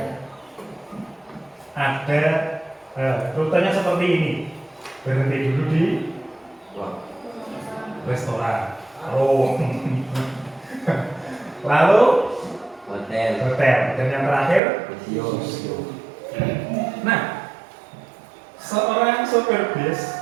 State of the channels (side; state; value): left; drops out; at 14.6 s